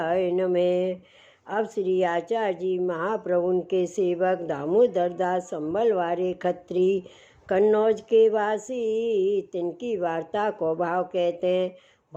नमः। अब श्री आचार्य जी महाप्रभु के सेवक दामोदर दास संबलवारे खत्री कन्नौज के वासी, तिनकी वार्ता को भाव कहते हैं।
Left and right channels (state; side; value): identical; both; correlation 1.00